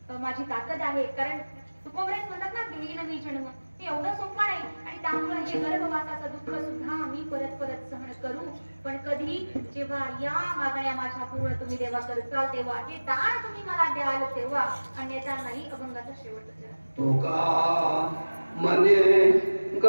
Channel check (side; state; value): both; inverted; correlation -1.00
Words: माझी ताकद आहे. कारण तुकोबराय म्हणतात ना घेईन मी जन्म, हे एवढं सोपं नाही. आणि त्यामुळे हे गर्भवासाचं दुःख सुद्धा मी परत परत सहन करू. पण कधी जेव्हा या मागण्या माझ्या पूर्ण तुम्ही देवा करताल तेव्हा, हे दान तुम्ही मला द्याल तेव्हा, अन्यथा नाही. अभंगाचा शेवट तुका मने